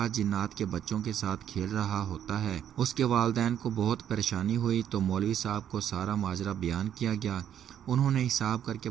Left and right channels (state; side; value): quieter; left; 9.9 dB